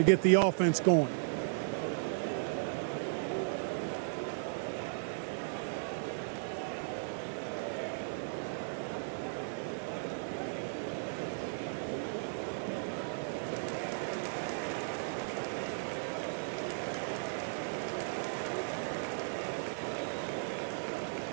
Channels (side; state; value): left; silent; 54 dB below the other